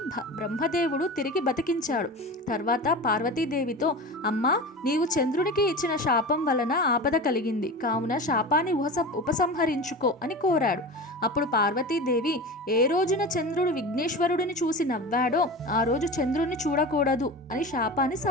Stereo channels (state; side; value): normal; both; correlation 0.30